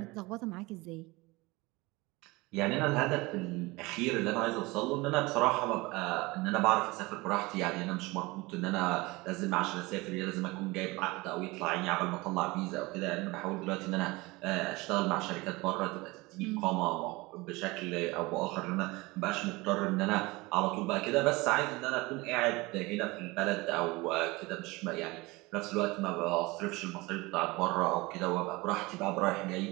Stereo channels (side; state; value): left; quieter; 22.9 dB